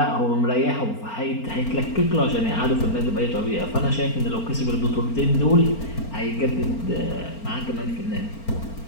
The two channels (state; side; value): late; right; 4.4 ms